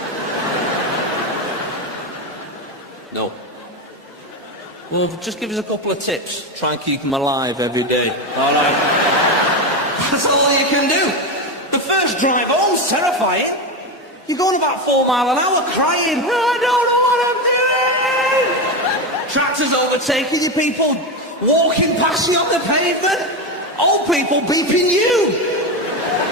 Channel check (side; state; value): both; normal; correlation 0.15